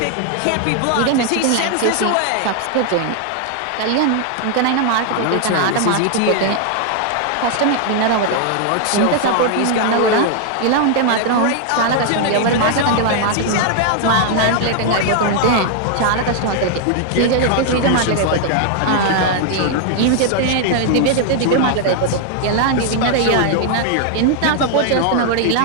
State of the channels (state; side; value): different; both; correlation 0.00